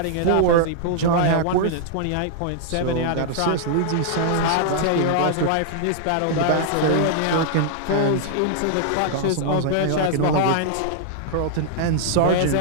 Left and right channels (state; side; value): different; both; correlation -0.01